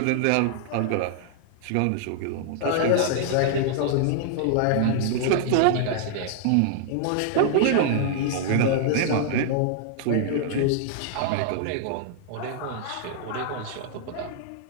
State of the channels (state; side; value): different; both; correlation -0.01